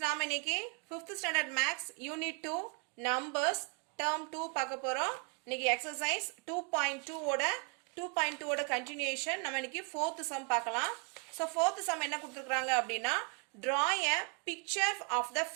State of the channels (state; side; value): quieter; left; 37.3 dB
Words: நாம இன்னைக்கு 5th standard maths unit 2 numbers term 2 பார்க்க போறோம். இன்னைக்கு exercise 2.2 ஓட continuation. நம்ம இன்னைக்கு 4th sum பார்க்கலாம். So 4th sum என்ன கொடுத்திருக்காங்க அப்படினா draw a picture of the